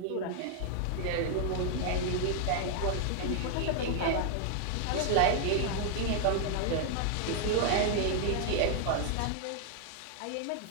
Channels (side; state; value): both; different; correlation 0.00